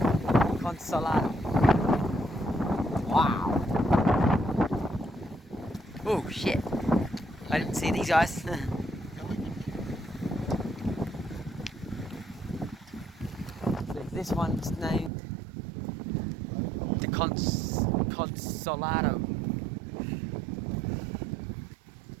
Consolado. Wow. Oh shit. I didn't see these guys. This one's named the Consolado.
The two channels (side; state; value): left; drops out; at 15.1 s